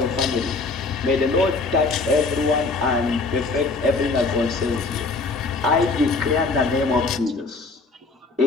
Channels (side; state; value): right; quieter; 3.8 dB